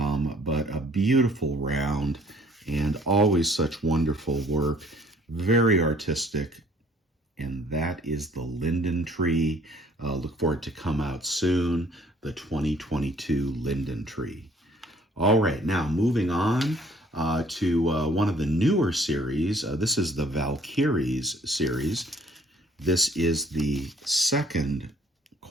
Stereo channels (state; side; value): normal; both; correlation 0.58